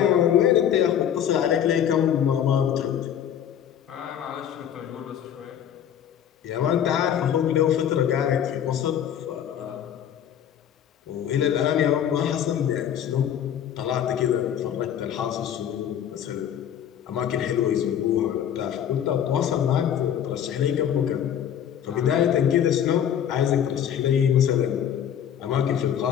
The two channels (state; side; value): quieter; right; 9.5 dB